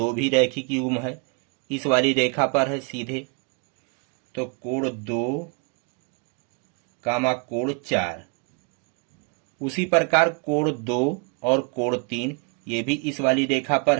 भी रैखिक युग्म है, इस वाली रेखा पर है सीधे। तो कोण 2 कामा कोण 4। उसी प्रकार कोण 2 और कोण 3 ये भी इस वाली रेखा पर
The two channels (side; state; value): left; quieter; 36.4 dB